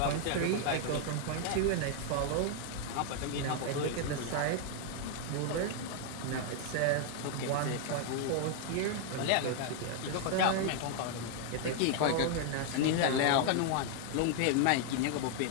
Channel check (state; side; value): different; both; correlation 0.00